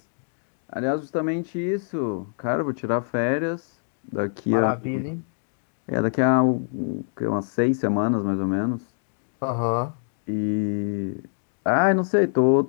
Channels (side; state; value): right; silent; 62 dB below the other